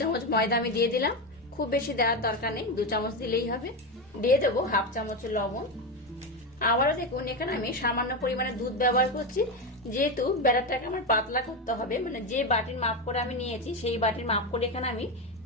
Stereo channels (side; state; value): both; normal; correlation 0.14